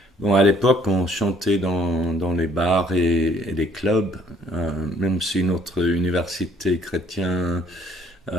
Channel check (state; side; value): normal; both; correlation 0.61